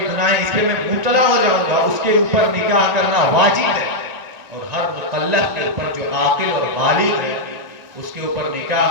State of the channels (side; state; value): left; late; 1.9 ms